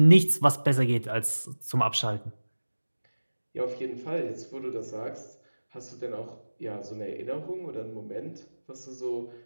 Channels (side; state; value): both; inverted; correlation -1.00